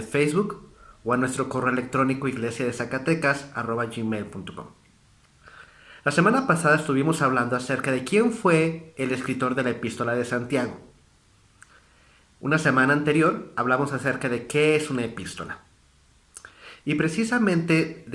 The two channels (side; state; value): both; identical; correlation 1.00